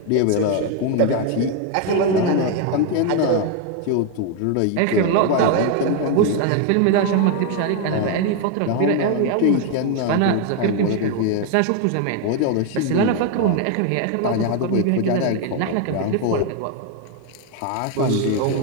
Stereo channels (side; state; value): both; different; correlation 0.01